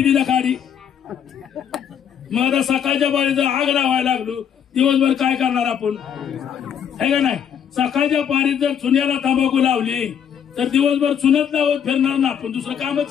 काढी. मग आता सकाळच्या पारीत जर आग लावायला लागलो, दिवसभर काय करणार आपण? आहे का नाही? सकाळच्या पारीत जर चुन्याला तंबाखू लावली तर दिवसभर चुनत लावत फिरणार ना आपण, दुसरं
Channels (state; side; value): quieter; right; 8.5 dB